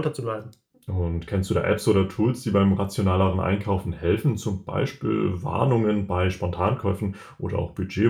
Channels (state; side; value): identical; both; correlation 1.00